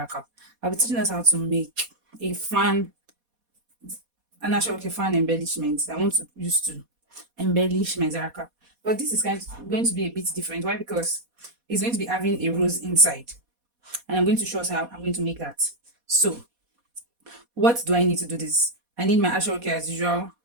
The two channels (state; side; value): late; left; 4.2 ms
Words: cap. I'll be teaching us how to make a fan, an actual fan embellishment that I want to use to embellish my Zara cap. But this is going to be a bit different. Why? Because it's going to be having a rose inside, and I'm going to show us how I'm going to make that. So what do I need to do this? I need my actual care as usual,